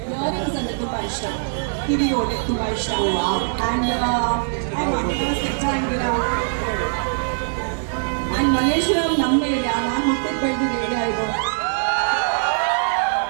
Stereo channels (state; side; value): silent; left; digital silence